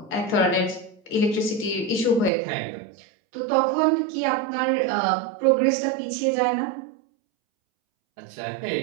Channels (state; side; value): drops out; left; at 2.3 s